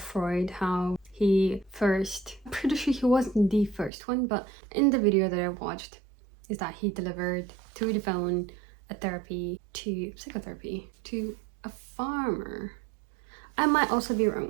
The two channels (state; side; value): drops out; left; at 3.9 s